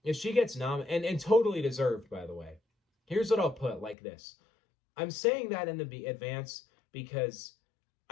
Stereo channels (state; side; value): drops out; right; at 4.0 s